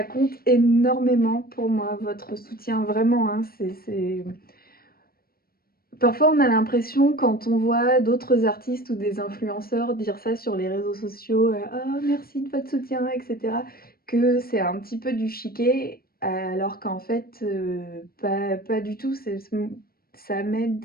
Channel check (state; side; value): late; right; 0.44 ms